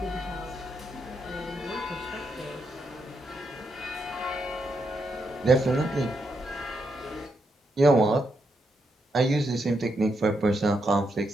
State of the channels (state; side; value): normal; both; correlation 0.81